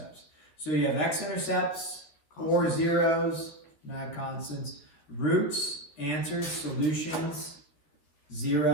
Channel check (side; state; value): right; late; 13 ms